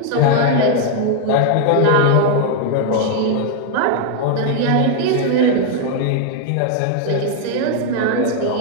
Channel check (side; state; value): both; different; correlation 0.00